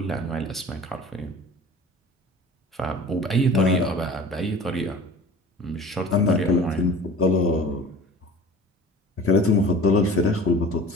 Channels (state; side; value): normal; both; correlation 0.41